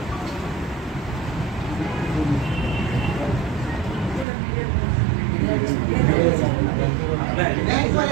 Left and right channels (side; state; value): left; drops out; at 4.2 s